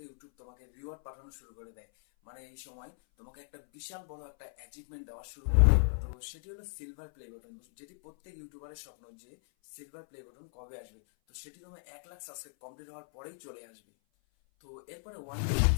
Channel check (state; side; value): silent; right; 54 dB below the other